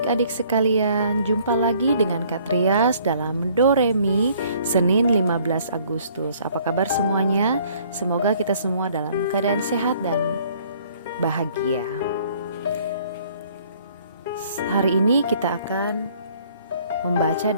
sekalian, jumpa lagi dengan Kak Trias dalam Doremi Senin 15 Agustus. Apa kabar semuanya? Semoga kita semua dalam keadaan sehat dan bahagia. Hari ini kita akan membaca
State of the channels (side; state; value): both; inverted; correlation -0.59